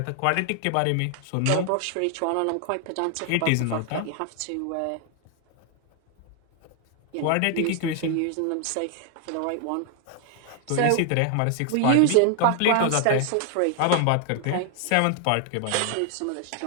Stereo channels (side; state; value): both; different; correlation 0.00